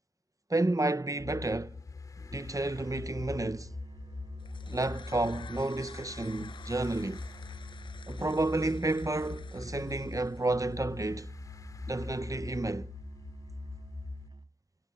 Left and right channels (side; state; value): both; normal; correlation 0.81